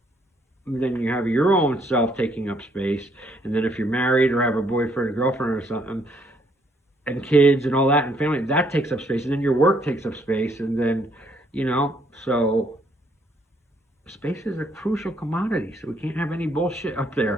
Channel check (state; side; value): normal; both; correlation 0.68